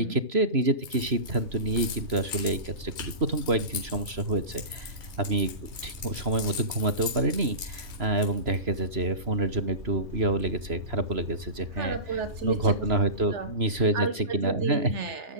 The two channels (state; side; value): late; left; 3.0 ms